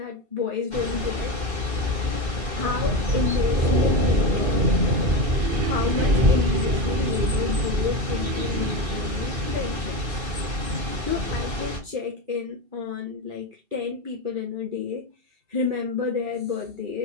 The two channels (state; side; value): late; left; 2.5 ms